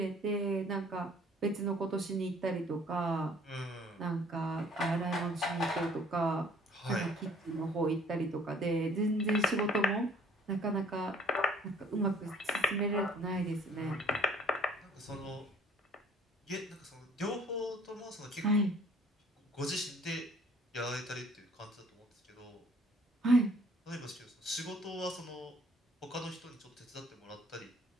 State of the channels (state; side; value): normal; both; correlation 0.57